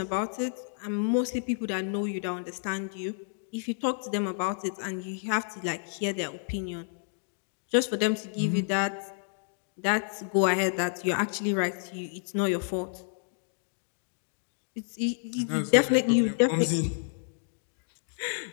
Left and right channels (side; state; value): right; silent; digital silence